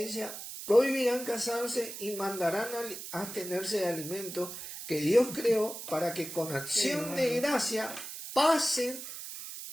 prohibirán casarse y mandarán a abstenerse de alimentos que Dios creó para que con acción de gracia pasen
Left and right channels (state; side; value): noise; right; hiss, 9 dB below the sound